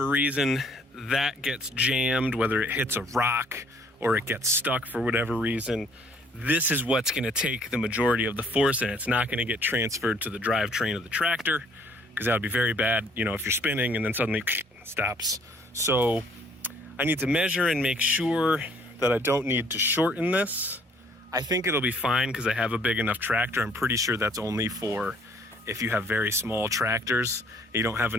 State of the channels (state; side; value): normal; both; correlation 0.61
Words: reason that gets jammed, whether it hits a rock or it gets stuck for whatever reason, this is what's going to take the majority of the force, and it's not going to get transferred to the drivetrain of the tractor, because that would be very bad, if you're spinning and then suddenly stops. So I need to measure and make sure that I don't need to shorten this. I think it'll be fine because I have a big enough tractor. I'm pretty sure that's only for if you have very small tractors. You don't have